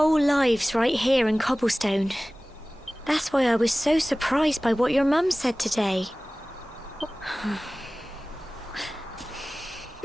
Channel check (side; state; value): both; normal; correlation 0.98